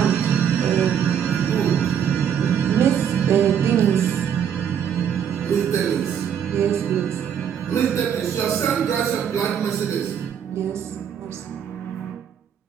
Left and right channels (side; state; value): left; quieter; 8.4 dB